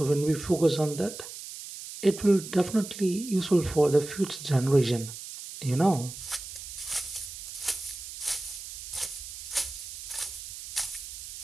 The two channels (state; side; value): noise; right; hiss, 11 dB below the sound